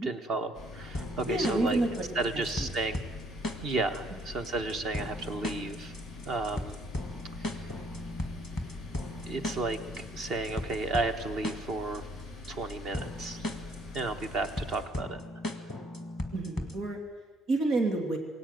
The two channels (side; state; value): both; normal; correlation 0.65